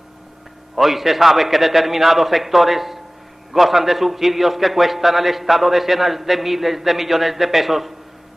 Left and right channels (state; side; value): normal; both; correlation 0.98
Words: Hoy se sabe que determinados sectores gozan de subsidios que cuestan al Estado decenas de miles de millones de pesos